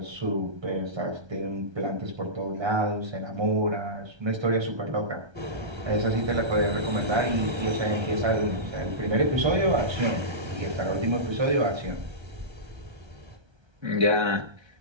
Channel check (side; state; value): left; late; 1.3 ms